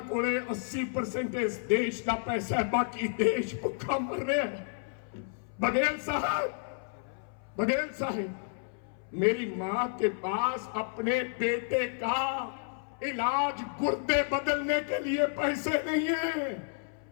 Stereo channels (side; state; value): right; silent; 57 dB below the other